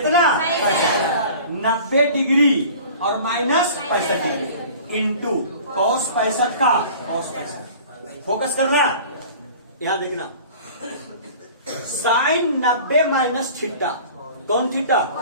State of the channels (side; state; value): both; inverted; correlation -0.43